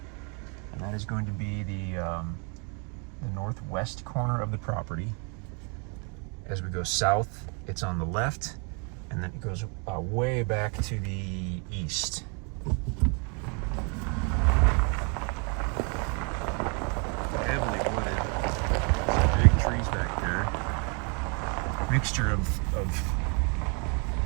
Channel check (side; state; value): left; quieter; 36.0 dB